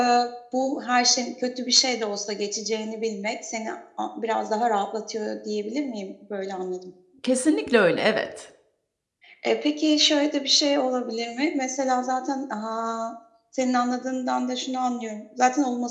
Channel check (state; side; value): identical; both; correlation 1.00